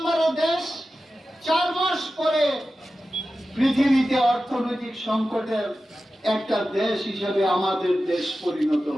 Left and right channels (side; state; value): both; normal; correlation 0.94